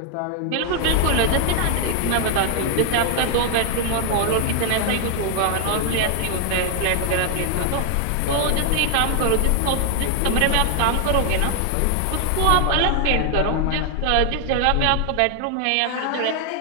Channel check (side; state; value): both; different; correlation 0.00